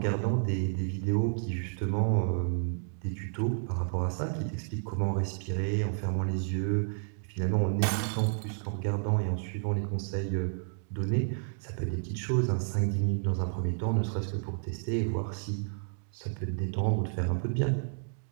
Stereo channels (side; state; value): left; silent; digital silence